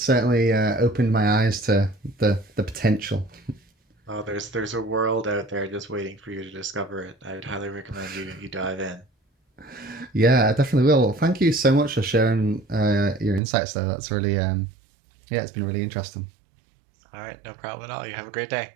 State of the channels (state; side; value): drops out; left; at 13.4 s